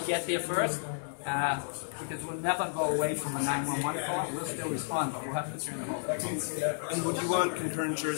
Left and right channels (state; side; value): silent; right; digital silence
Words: get there first, because we'll never go away from a 911 call. We'll still respond, but we'll have to turn the whole thing. And would you want concurrent